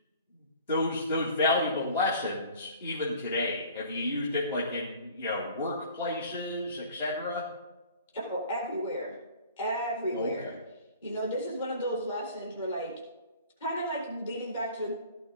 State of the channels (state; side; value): inverted; both; correlation -0.48